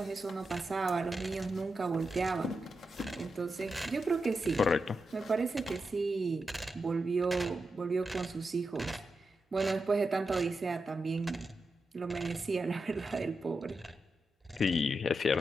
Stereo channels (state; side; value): normal; both; correlation 0.88